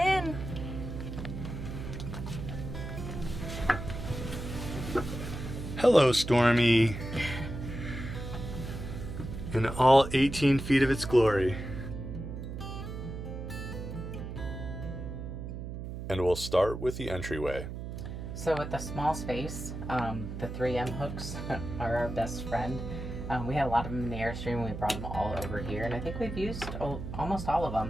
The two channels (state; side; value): noise; right; hum, 7 dB below the sound